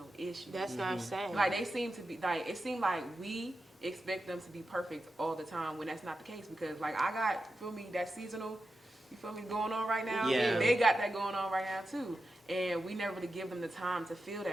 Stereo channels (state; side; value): normal; both; correlation 0.90